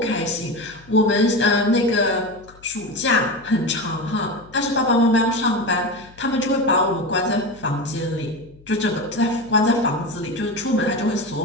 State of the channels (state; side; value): noise; left; hum, 25 dB below the sound